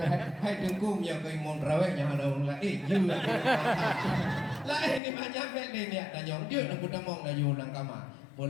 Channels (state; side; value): drops out; right; at 5.0 s